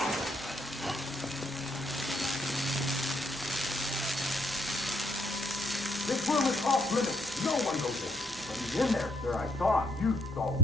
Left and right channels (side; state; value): left; noise; hum, 23 dB below the sound